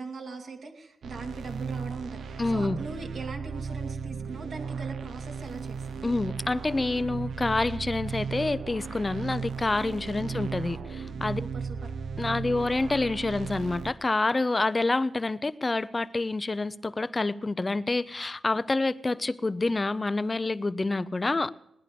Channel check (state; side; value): normal; both; correlation 0.95